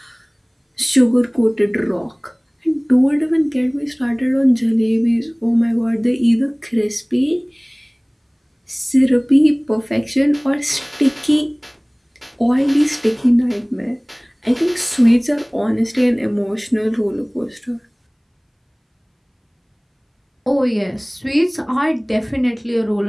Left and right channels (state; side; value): identical; both; correlation 1.00